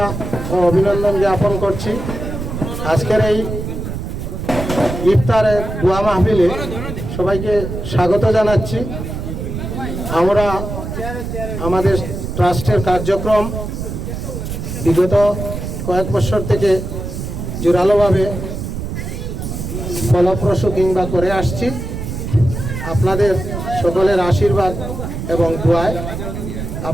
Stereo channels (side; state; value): right; noise; rumble, 6 dB below the sound